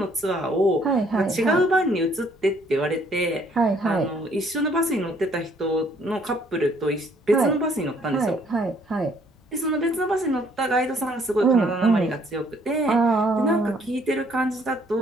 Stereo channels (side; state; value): both; normal; correlation 0.64